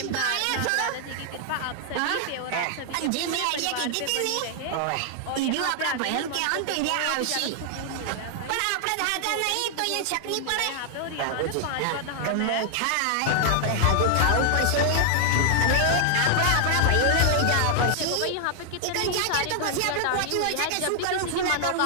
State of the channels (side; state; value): both; different; correlation 0.00